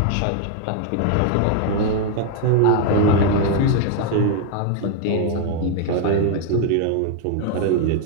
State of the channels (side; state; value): both; different; correlation 0.00